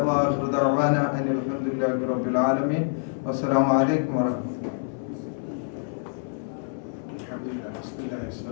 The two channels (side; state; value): right; silent; 61 dB below the other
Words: വആഖിറു ദഅവാന അനിൽ ഹംദുലില്ലാഹി റബ്ബിൽ ആലമീൻ. വസ്സലാമു അലൈക്കും വറഹ്മത്തുള്ളാഹി.